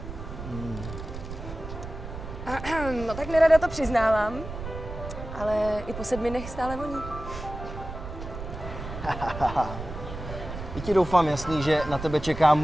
No tak nerada to přiznávám, ale i po 7 dnech stále voní. I ti doufám jasný, že na tebe čeká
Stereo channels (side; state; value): right; noise; rumble, 9 dB below the sound